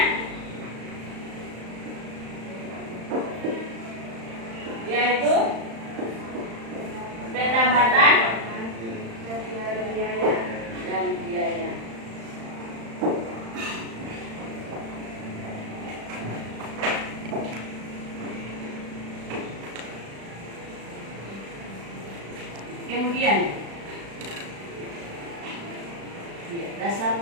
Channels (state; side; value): late; left; 35 ms